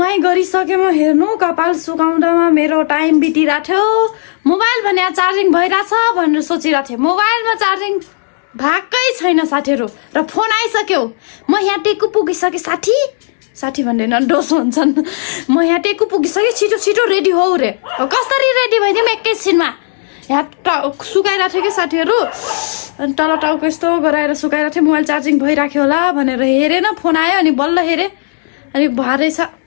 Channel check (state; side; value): silent; right; digital silence